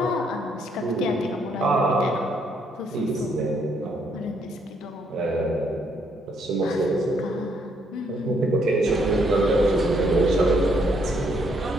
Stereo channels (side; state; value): both; normal; correlation 0.71